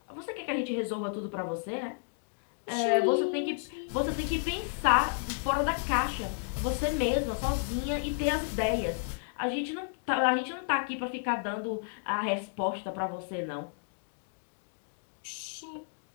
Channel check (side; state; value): right; silent; digital silence